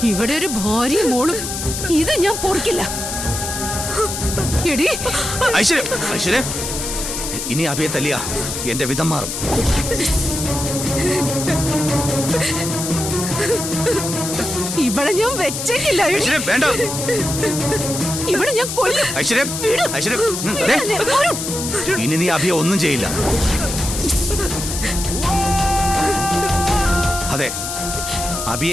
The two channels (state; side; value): noise; left; hiss, 5 dB below the sound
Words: ഇവിടെ ഒരു ഭാര്യയും മോളും ഇത് ഞാൻ പൊറുക്കില്ല. എടി ഐശ്വര്യ ഐശ്വര്യ ഇനി അഭിയെ തല്ലിയ എന്റെ വിധം മാറും. ഇവിടെ ഞാൻ വെച്ചേക്കില്ല. എടി. ഐശ്വര്യ വേണ്ട ഇവിടെ ഞാൻ കൊല്ലും. ഐശ്വര്യ ഐശ്വര്യ ദേ, ഇനി നീ അഭിയെ ഒന്നും ചെയ്യില്ല. അതെ